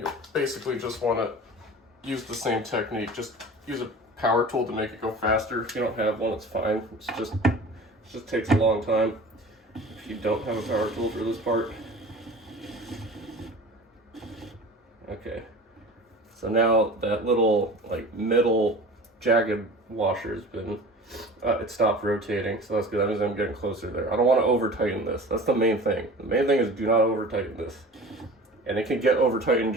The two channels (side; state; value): both; normal; correlation 0.39